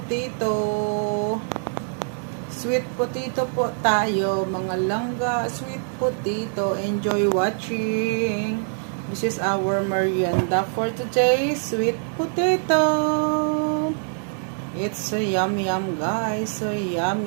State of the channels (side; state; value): left; silent; 61 dB below the other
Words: Sweet potato po tayo, mga langga, sweet potato. Enjoy watching. This is our merienda for today, sweet potato. It's so yummy guys, so